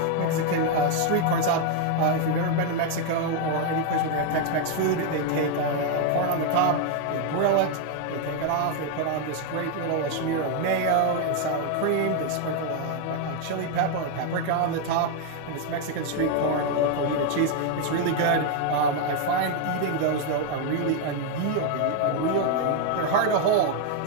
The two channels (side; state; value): both; different; correlation 0.01